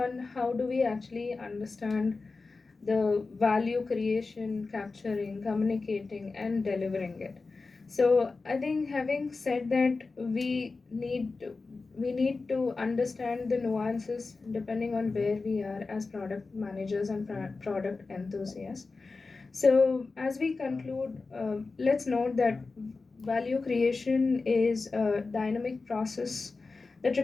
how do we actually understand the value creation, capturing, communicating, and delivering it. So I think having said that, we need to understand the nuances depending on where we are as product managers and product enthusiasts. So, as we conclude, let's note that value creation is a dynamic process that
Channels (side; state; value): right; quieter; 4.0 dB